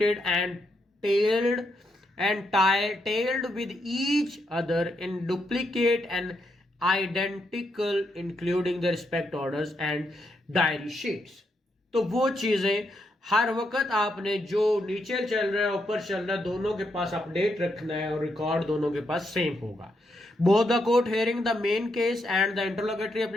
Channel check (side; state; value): both; normal; correlation 0.80